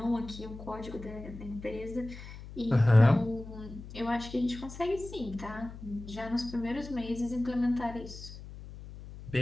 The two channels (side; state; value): left; noise; hum, 13 dB below the sound